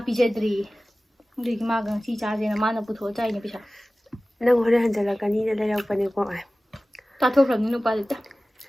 ꯄꯤꯖꯗ꯭ꯔꯤ ꯑꯗꯨꯒꯤ ꯃꯥꯒ ꯉꯁꯤ ꯆꯥꯁꯦꯅ ꯃꯥꯅ ꯄꯨꯊꯣꯛꯑ ꯆꯥꯏꯅꯦ ꯄꯩꯁꯥ ꯅꯪ ꯍꯣꯔꯦꯟ ꯍꯟꯖꯜꯂꯛꯀꯅꯤꯅ ꯂꯩꯔꯛꯄꯅꯦꯀꯣ ꯆꯥꯊꯣꯛꯈ꯭ꯔꯕꯅꯤ ꯅꯨꯄꯥ ꯂꯩꯇ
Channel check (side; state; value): both; normal; correlation 0.97